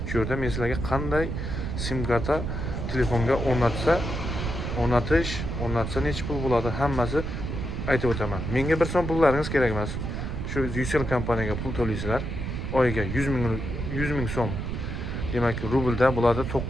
Shu yerda men sizlarga qanday sim karta telefonga o'rnatsa necha pul bo'ladi, hammasi aytib o'taman. Menga 1 so'm pullaringiz kerak emas. Shu Ucell kompaniyaga pul to'laysizlar. Oyiga 100 ming so'm. Demak, rublda bo'ladi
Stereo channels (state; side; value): noise; right; rumble, 4 dB below the sound